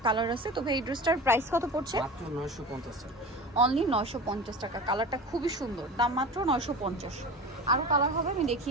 কালার আছে। তবে এই ড্রেসটার প্রাইস কত পড়ছে? মাত্র 950 টাকা। অনলি 950 টাকা। কালারটা খুবই সুন্দর, দাম মাত্র 950। আরও কালার হবে, আমি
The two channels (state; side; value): normal; both; correlation 0.33